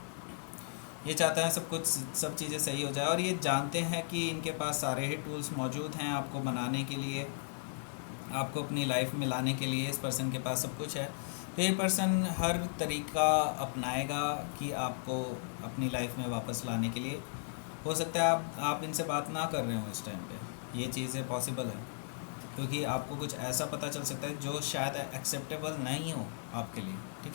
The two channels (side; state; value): right; silent; 54 dB below the other